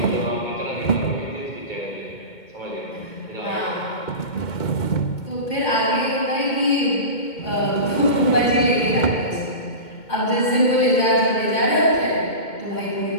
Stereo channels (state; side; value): late; right; 2.2 ms